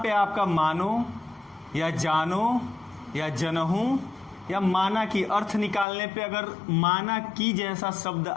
आपका मानो या जानो या जनहूं या माना की अर्थ निकालने पे अगर माना की जैसा शब्द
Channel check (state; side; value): drops out; right; at 5.9 s